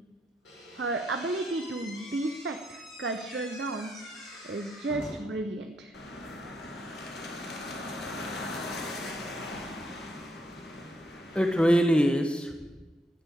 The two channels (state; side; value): normal; both; correlation 0.76